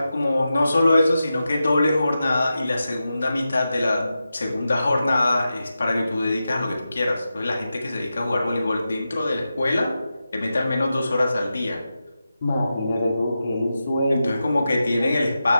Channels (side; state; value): both; inverted; correlation -0.91